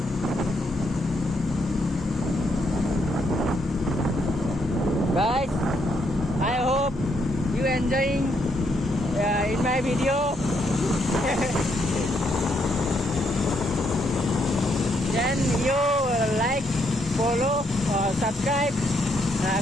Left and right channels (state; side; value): normal; both; correlation 0.75